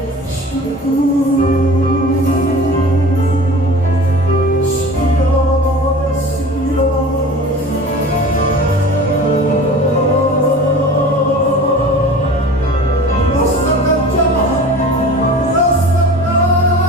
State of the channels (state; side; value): noise; right; hum, 29 dB below the sound